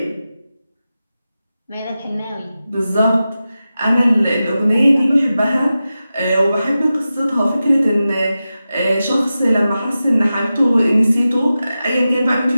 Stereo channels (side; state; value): both; inverted; correlation -0.93